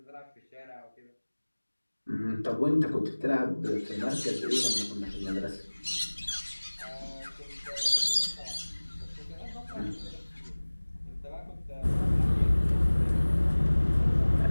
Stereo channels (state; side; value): inverted; both; correlation -1.00